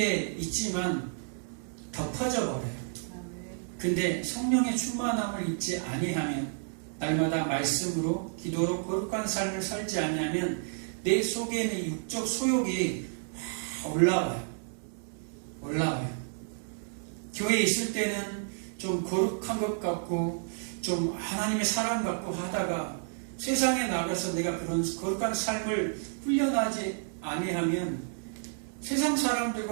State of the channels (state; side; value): silent; left; 56 dB below the other